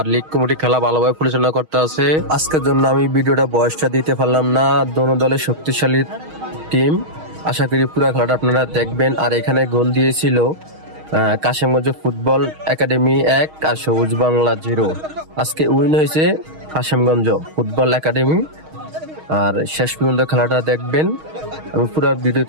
লীগ কমিটি খেলা ভালোভাবে পরিচালনা করতে আছে। আজকের জন্য আমি ভিডিওটা বয়সটা দিতে পারলাম না। দোনো দলের শক্তিশালী টিম, আশা করি পুরো খেলাটা আপনারা দেখবেন। আর এখানে গোল দিয়েছিল কাশিমগঞ্জ ফুটবল একাডেমি 1 আর সবুজ বাংলা 0। আজকে উইন হয়েছে কাশিমগঞ্জ ফুটবল একাডেমি। আর শেষ পর্যন্ত খেলাটা দেখবেন। আমি পুরো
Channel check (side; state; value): left; late; 6.4 ms